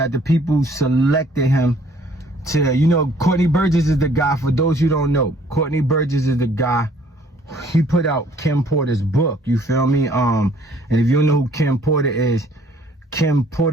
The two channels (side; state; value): both; normal; correlation 0.59